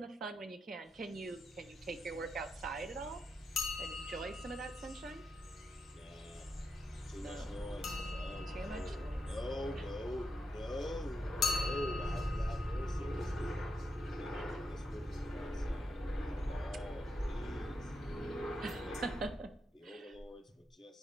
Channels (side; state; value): both; normal; correlation 0.84